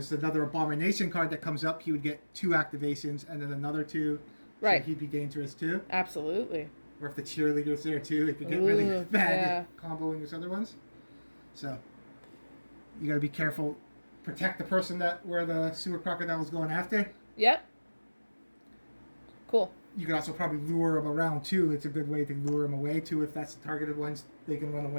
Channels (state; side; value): inverted; both; correlation -1.00